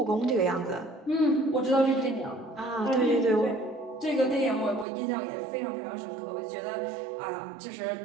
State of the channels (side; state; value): left; drops out; at 4.9 s